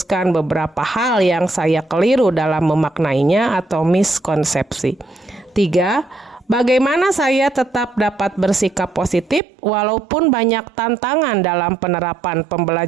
beberapa hal yang saya keliru dalam memaknainya atau miskonsepsi. 3. Bagaimana saya tetap dapat bersikap positif walaupun banyak tantangan dalam penerapan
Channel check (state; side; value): drops out; left; at 9.4 s